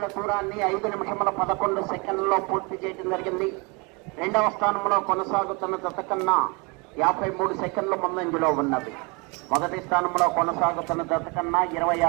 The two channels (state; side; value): quieter; left; 29.6 dB